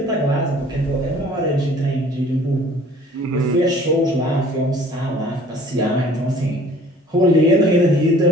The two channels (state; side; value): normal; both; correlation 0.52